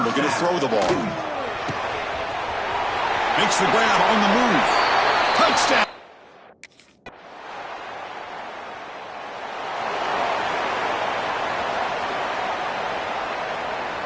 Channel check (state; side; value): identical; both; correlation 1.00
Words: looking to throw the ball. Makes the grab on the move. Touchdown.